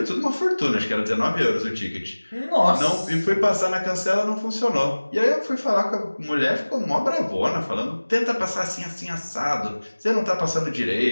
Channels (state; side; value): inverted; both; correlation -1.00